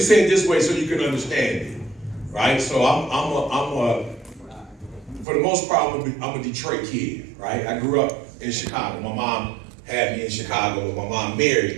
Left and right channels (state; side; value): drops out; left; at 5.2 s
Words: it this way so you can understand it. Right? So for the most part, I'm a Detroit kid. Right? I grew up in Chicago. My mom had me in Chicago, but my mom